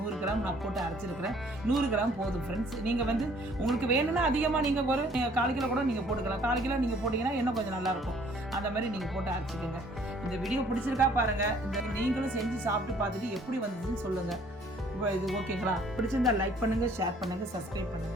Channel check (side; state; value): both; normal; correlation 0.58